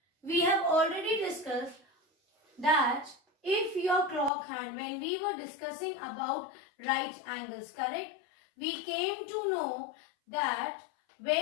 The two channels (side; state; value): right; drops out; at 4.3 s